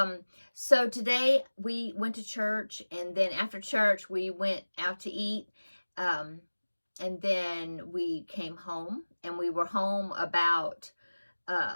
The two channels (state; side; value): inverted; both; correlation -1.00